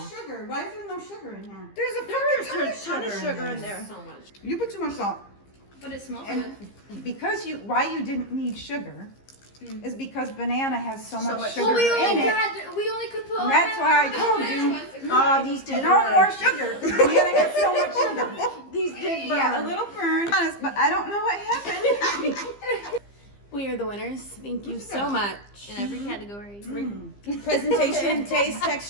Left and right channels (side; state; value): right; late; 15 ms